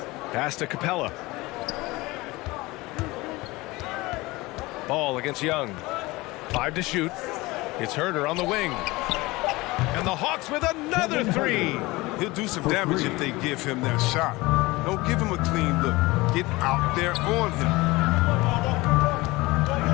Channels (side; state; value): right; quieter; 21.4 dB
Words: Pass to Capella. Ball against Young. 5 to shoot. It's Herter on the wing. And the Hawks with another 3. He'll do some damage if they give him that shot. Don't give him a clean look. Get out there on him.